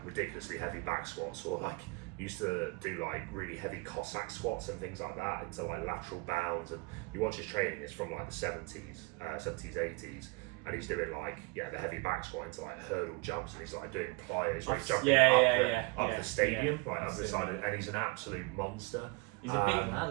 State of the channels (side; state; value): left; quieter; 26.8 dB